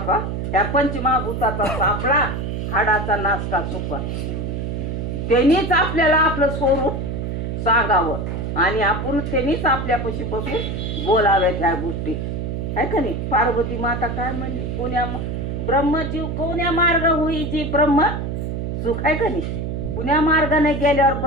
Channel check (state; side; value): noise; right; hum, 3 dB below the sound